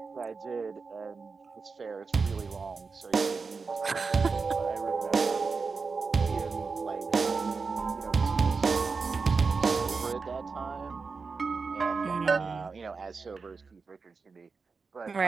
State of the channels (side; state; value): left; quieter; 4.7 dB